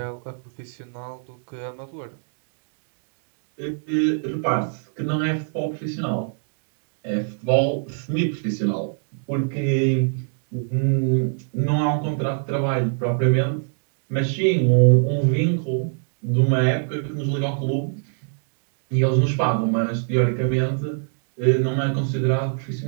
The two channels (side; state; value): left; silent; digital silence